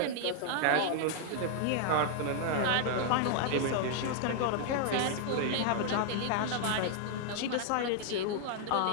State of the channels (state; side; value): different; both; correlation -0.01